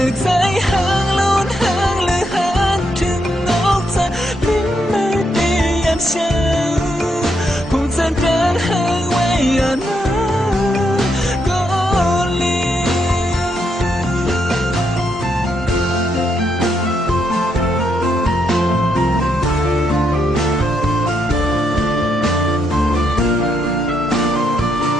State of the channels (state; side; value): normal; both; correlation 0.78